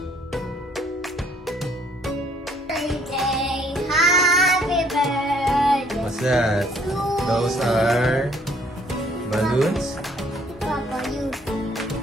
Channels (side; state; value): both; normal; correlation 0.62